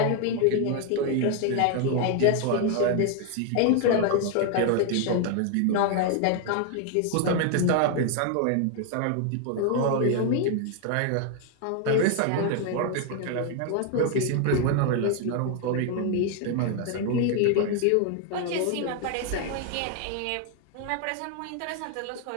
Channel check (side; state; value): both; different; correlation 0.00